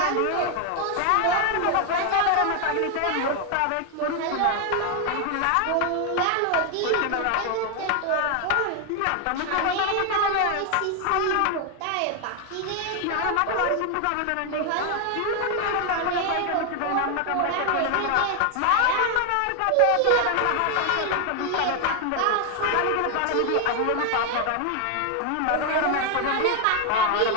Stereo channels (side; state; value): both; different; correlation 0.01